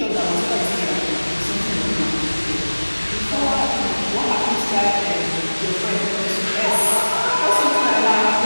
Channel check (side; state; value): both; inverted; correlation -1.00